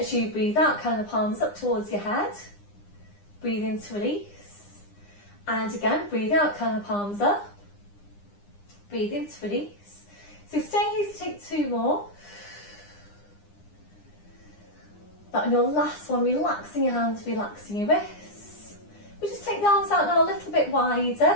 you breathe out, kind of palms up towards your head. Breathe in to release. And again, breathe out, kind of palms up. Breathe in to release. So stay here to take two more. That on your last one, relaxing your hands, relaxing your wrists. We just take the arms out now a little bit wider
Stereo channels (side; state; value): right; late; 9.9 ms